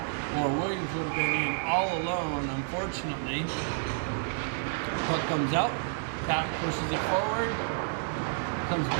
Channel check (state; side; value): silent; left; digital silence